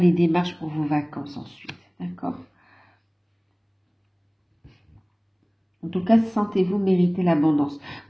les démarches pour vos vacances ensuite. D'accord? En tout cas, sentez-vous mériter l'abondance.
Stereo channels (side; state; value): both; identical; correlation 1.00